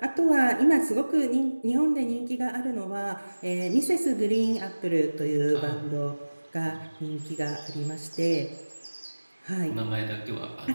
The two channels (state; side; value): inverted; both; correlation -1.00